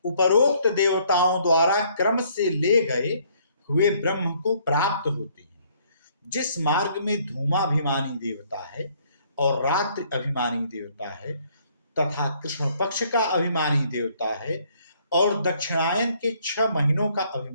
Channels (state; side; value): inverted; both; correlation -0.65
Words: उपरोक्त देवताओं द्वारा क्रम से ले गए हुए ब्रह्म को प्राप्त होते हैं। जिस मार्ग में धूमाभिमानी देवता है और रात्रि अभिमानी देवता है तथा कृष्ण पक्ष का अभिमानी देवता है और दक्षिणायन के 6 महीनों का